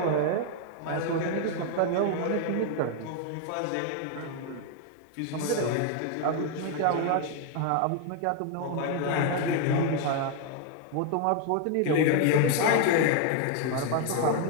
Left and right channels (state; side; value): different; both; correlation 0.00